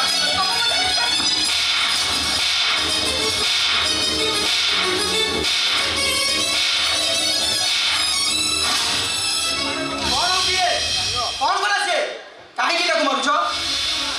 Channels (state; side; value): identical; both; correlation 1.00